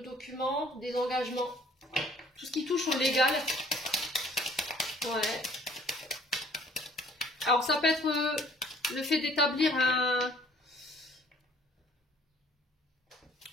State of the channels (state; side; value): normal; both; correlation 0.56